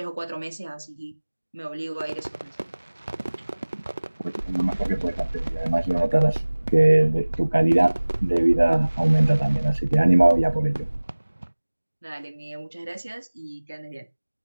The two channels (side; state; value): both; inverted; correlation -1.00